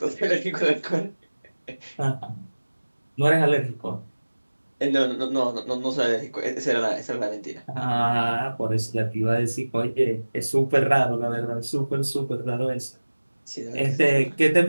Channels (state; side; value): inverted; both; correlation -1.00